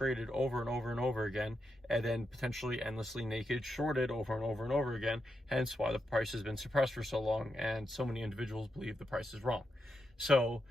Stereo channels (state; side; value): normal; both; correlation 0.84